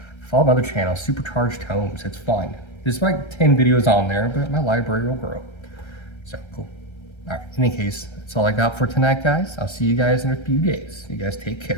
Follow my other channel, Supercharged Homes. It's fun. There's like 10 videos on there, but my library will grow. So cool. All right. In any case, that's all I got for tonight, guys. I'll see you guys in a few days. You guys take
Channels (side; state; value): right; late; 1.3 ms